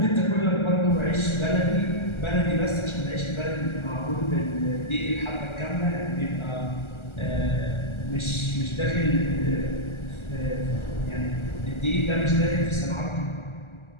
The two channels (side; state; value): right; late; 1.4 ms